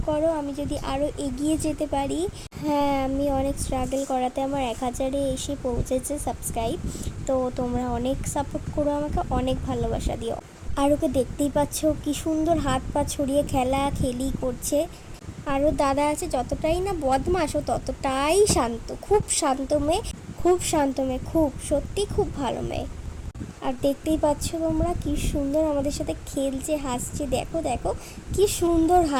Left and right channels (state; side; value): identical; both; correlation 1.00